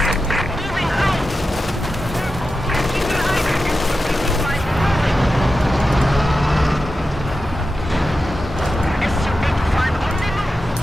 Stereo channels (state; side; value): normal; both; correlation 0.91